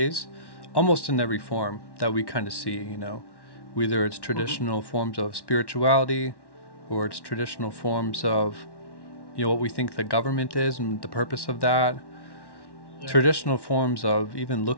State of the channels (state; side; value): late; right; 1.1 ms